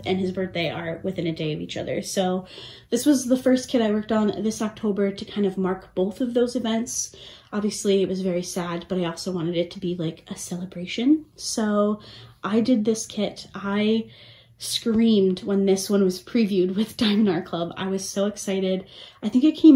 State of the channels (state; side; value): identical; both; correlation 1.00